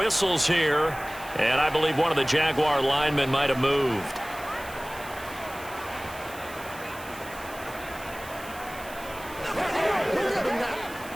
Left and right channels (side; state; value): right; noise; hiss, 17 dB below the sound